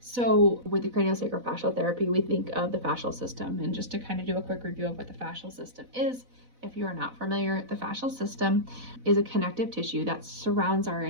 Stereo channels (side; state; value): left; late; 4.0 ms